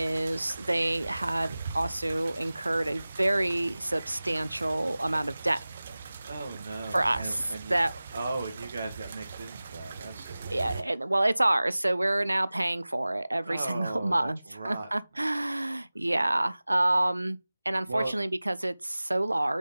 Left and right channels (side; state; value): both; inverted; correlation -0.98